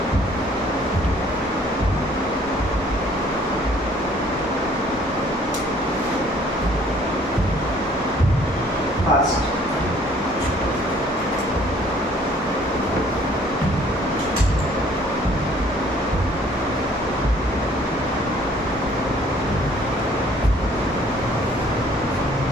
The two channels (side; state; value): both; normal; correlation 0.58